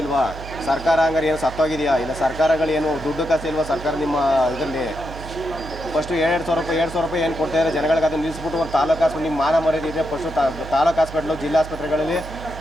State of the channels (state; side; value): noise; right; hum, 12 dB below the sound